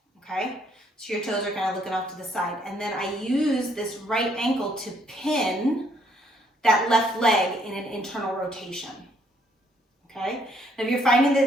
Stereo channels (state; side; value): normal; both; correlation 0.68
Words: okay? So your toes are kind of looking off to the side. And then I use this right ankle to pin that left leg in an internal rotation, okay? Now if you're finding that